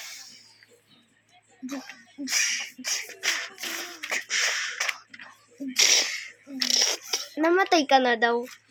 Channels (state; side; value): identical; both; correlation 1.00